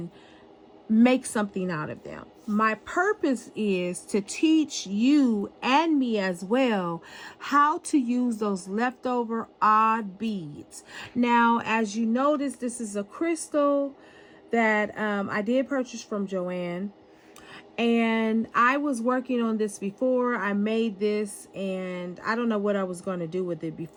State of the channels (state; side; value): identical; both; correlation 1.00